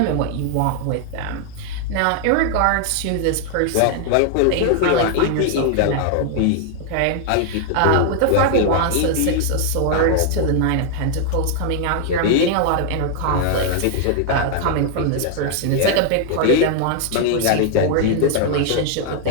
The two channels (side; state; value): both; different; correlation 0.00